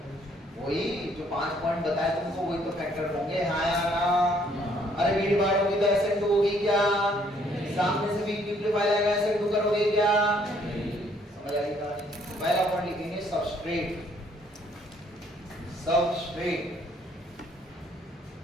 वही जो 5 पॉइंट बताए तुमको वही तो फैक्टर होंगे। हाँ या ना? अरे भीड़ भाड़ होगी तो SN2 होगी क्या? सामने से वीक न्यूक्लियोफाइल आएगा SN2 करोगे क्या? समझ आई बात? पहला पॉइंट लिखेंगे सबस्ट्रेट। सबस्ट्रेट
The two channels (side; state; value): both; normal; correlation 0.65